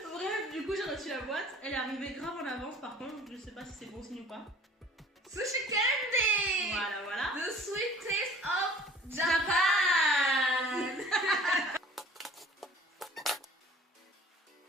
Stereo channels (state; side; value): normal; both; correlation 0.50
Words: Bref, du coup j'ai reçu la boîte. Elle est arrivée grave en avance par contre. Je sais pas si c'est bon signe ou pas. Sushi Candy. Voilà. The sweet taste of Japan.